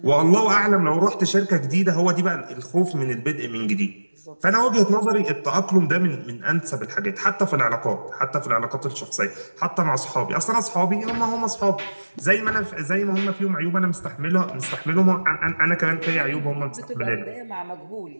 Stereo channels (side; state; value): both; inverted; correlation -1.00